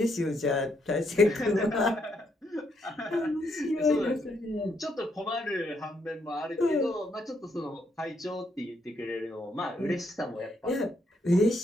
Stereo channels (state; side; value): normal; both; correlation 0.75